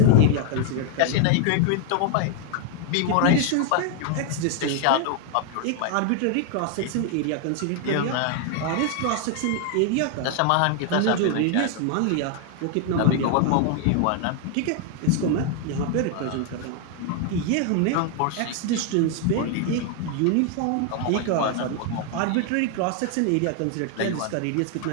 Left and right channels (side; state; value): both; different; correlation 0.00